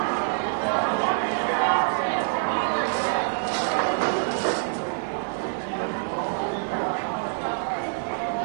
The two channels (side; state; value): left; silent; digital silence